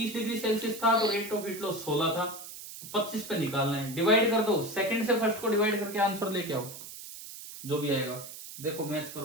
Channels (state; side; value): noise; right; hiss, 12 dB below the sound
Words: डिग्री सेल्सियस था तो रेट ऑफ हीट लॉस 16 था, 25 पे निकालना है। डिवाइड कर दो, सेकंड से फर्स्ट को डिवाइड करके आंसर लेके आओ, जो भी आएगा। देखो मैच